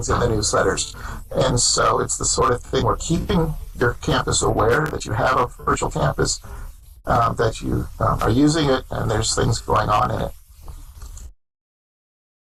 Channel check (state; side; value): identical; both; correlation 1.00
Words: in the newsletters. And so it's the sort of thing we're keeping your campus aware that you have a virtual campus, that you are using it and there's things going on in it.